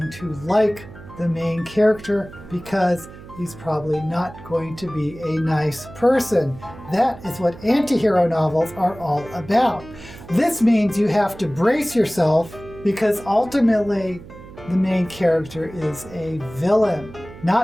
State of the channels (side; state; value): right; noise; hum, 17 dB below the sound